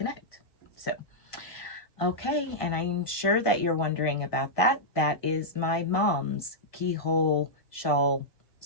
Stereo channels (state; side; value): late; right; 1.5 ms